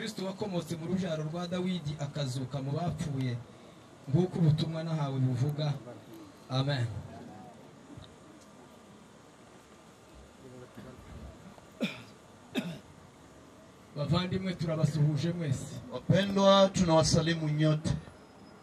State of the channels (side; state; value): both; identical; correlation 1.00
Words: wakomotse mu rujaro rwa Dawidi akazuka mu bapfuye, nguko ubutumwa nahawe buvuga. Amen. Bavandimwe turabasuhuje mwese. Wapendwa, tunawasalimu nyote.